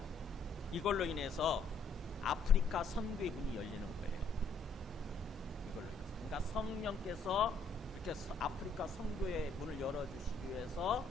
이걸로 인해서 아프리카 선교의 문이 열리는 거예요. 그러니까 성령께서 이렇게 아프리카 선교의 문을 열어주시기 위해서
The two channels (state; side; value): quieter; right; 3.8 dB